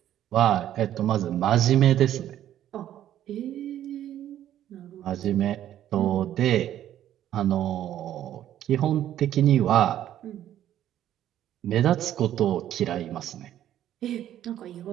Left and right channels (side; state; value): left; quieter; 11.7 dB